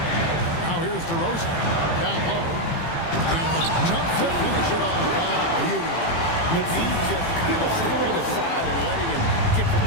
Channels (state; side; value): late; right; 18 ms